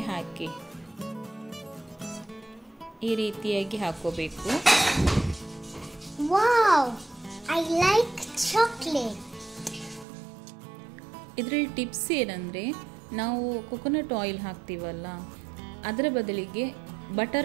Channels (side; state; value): left; drops out; at 10.1 s